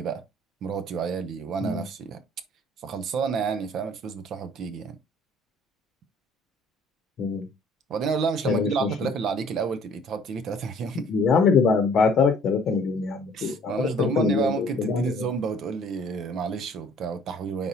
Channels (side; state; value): both; normal; correlation 0.56